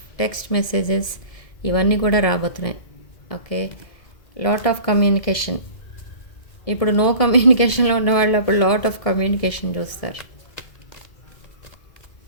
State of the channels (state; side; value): late; right; 1.7 ms